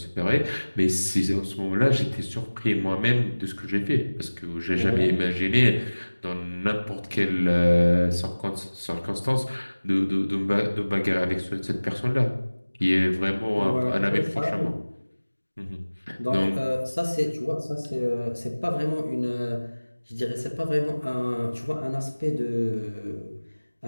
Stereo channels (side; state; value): both; inverted; correlation -1.00